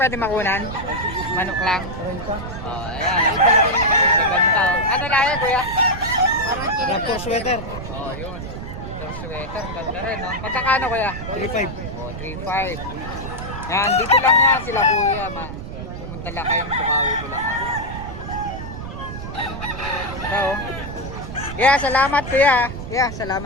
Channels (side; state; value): right; noise; rumble, 8 dB below the sound